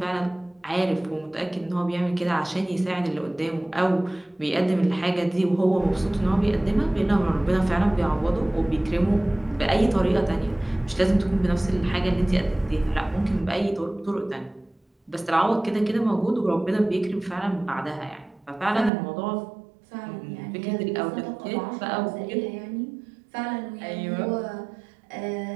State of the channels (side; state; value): left; drops out; at 18.9 s